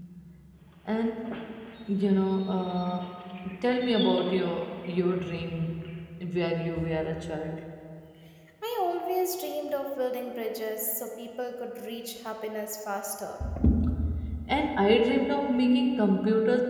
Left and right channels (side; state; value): both; identical; correlation 1.00